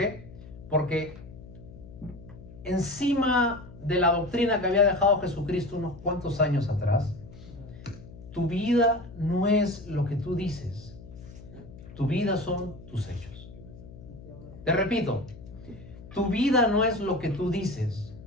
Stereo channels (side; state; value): left; noise; hum, 17 dB below the sound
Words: Porque encima de la doctrina que había dejado Jesucristo unos cuantos años atrás, tu vida no es lo que tú dices, tu vida son tus hechos. Te repito, tu vida no es lo que tú dices,